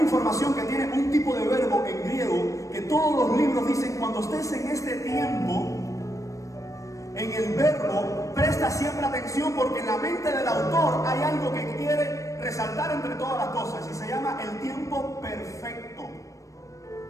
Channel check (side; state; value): right; late; 0.16 ms